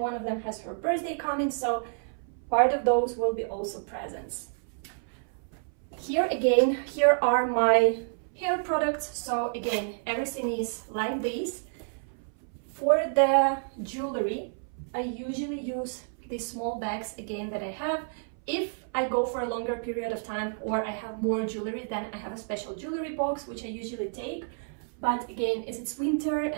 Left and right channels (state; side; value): silent; left; 58 dB below the other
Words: one of them has her birthday coming, so part of those will be also presents. Here again, here are my hair products. So again, everything is like this. For the jewelry, I usually use these small bags again that I have. If I go for a longer period of time or I have more jewelry, then I have a special jewelry box, which I usually take. But again, as it's winter